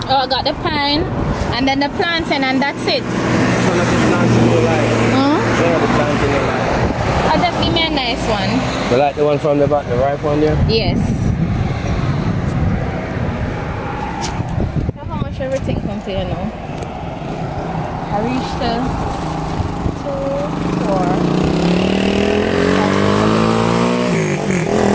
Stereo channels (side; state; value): both; identical; correlation 1.00